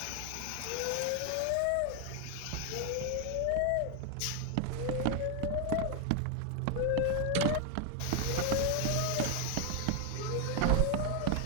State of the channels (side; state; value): both; different; correlation 0.00